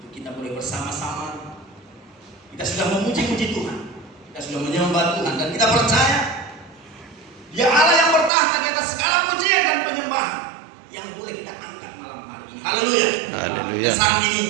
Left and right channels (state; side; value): drops out; left; at 8.3 s